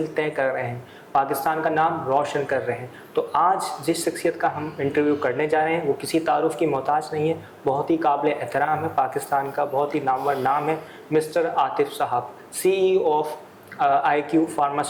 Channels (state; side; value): identical; both; correlation 1.00